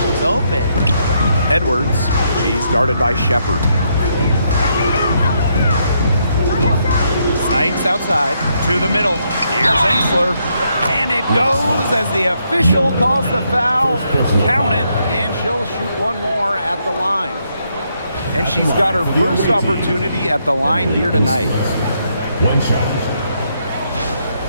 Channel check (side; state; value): both; inverted; correlation -0.76